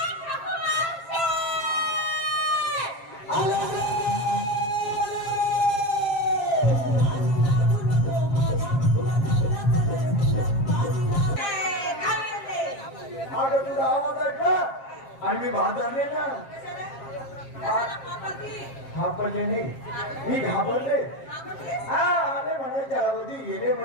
तुझा आवाज ऐकला आणि मी भादरले ना घाबरले नाही मी घाबरले हा आले म्हणायच्या अगोदी गेले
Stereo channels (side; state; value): right; late; 7.4 ms